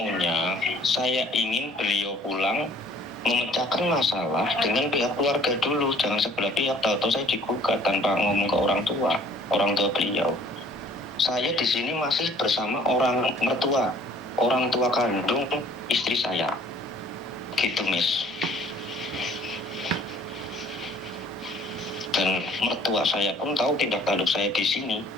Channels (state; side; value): normal; both; correlation 0.55